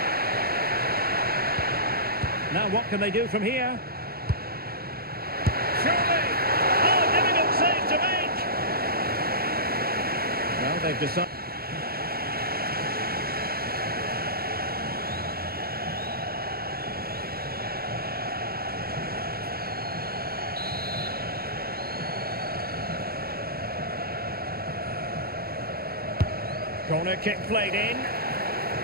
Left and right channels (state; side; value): late; left; 0.44 ms